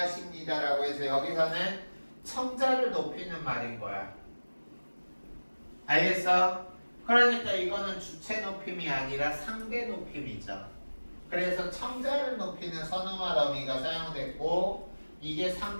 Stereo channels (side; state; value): both; inverted; correlation -1.00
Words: 해서 여기서는 청자를 높이는 말인 거야. 알겠어? 그러니까 이거는 주체 높임이 아니라 상대 높임이죠. 그래서 청자를 높이는 선어말 어미가 사용됐고 이게